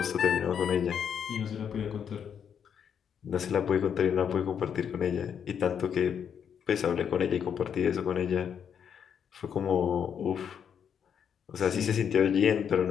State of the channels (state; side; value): quieter; right; 7.9 dB